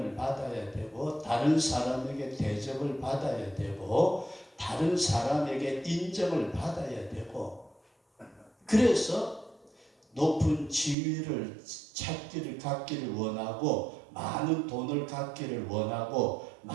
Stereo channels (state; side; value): drops out; left; at 11.0 s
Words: 받아야 되고 다른 사람에게 대접을 받아야 되고 다른 사람에게 인정을 받아야 되고 그래서 높은 지위를 찾기를 갖기를 원하고 많은 돈을 갖기를 원하고